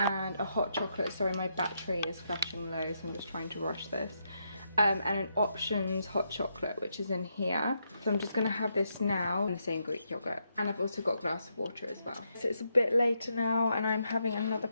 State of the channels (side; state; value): both; inverted; correlation -0.80